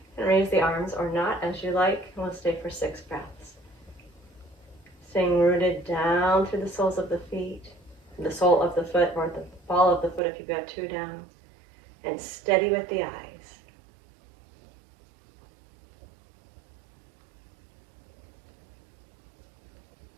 and raise the arms or not as you like. We'll stay for 6 breaths. Staying rooted down through the soles of the feet, the sole of the foot or the ball of the foot if you've got 2 down, and steady with the eyes.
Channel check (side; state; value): left; drops out; at 10.2 s